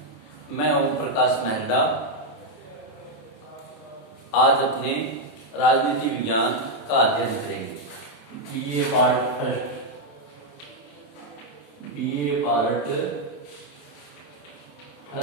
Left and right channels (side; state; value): right; late; 27 ms